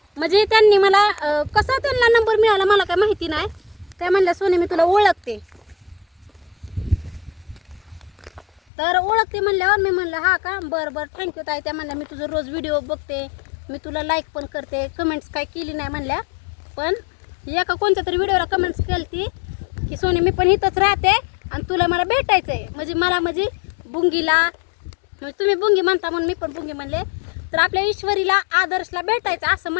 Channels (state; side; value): drops out; right; at 8.6 s